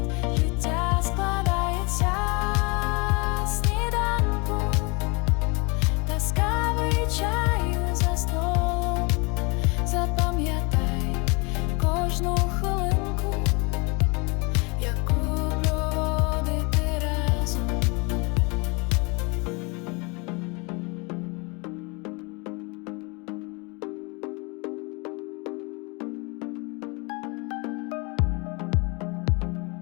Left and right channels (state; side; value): quieter; right; 29.4 dB